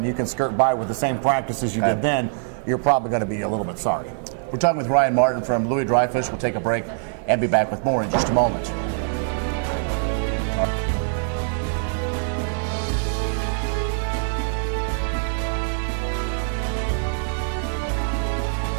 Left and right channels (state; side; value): silent; left; digital silence